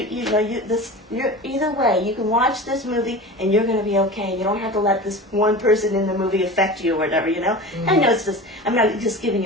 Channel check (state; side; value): normal; both; correlation 0.33